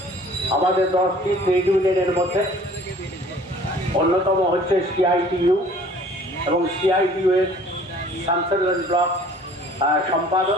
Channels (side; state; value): both; normal; correlation 0.51